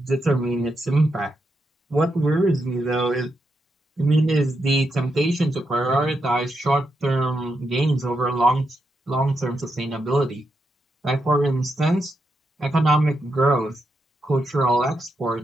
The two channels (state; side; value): normal; both; correlation 0.83